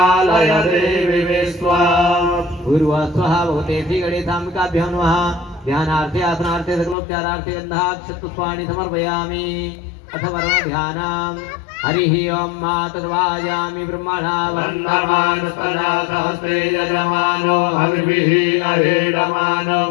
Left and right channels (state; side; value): drops out; right; at 7.0 s